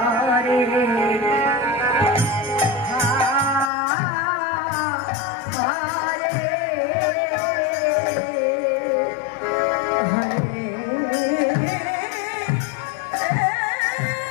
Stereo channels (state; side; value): drops out; right; at 3.7 s